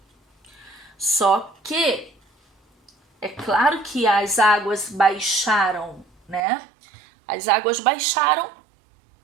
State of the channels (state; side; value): drops out; left; at 6.5 s